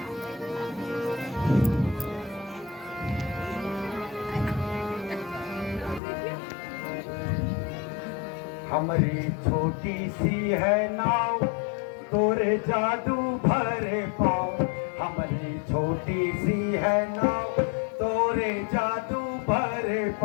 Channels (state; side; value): drops out; right; at 6.0 s